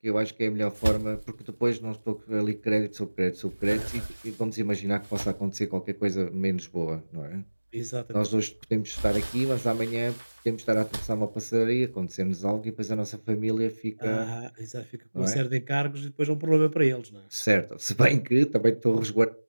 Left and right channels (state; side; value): inverted; both; correlation -1.00